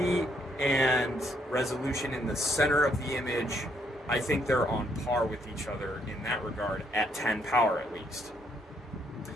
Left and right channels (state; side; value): normal; both; correlation 0.72